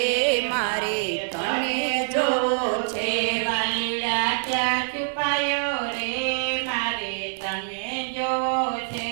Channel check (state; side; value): silent; left; 62 dB below the other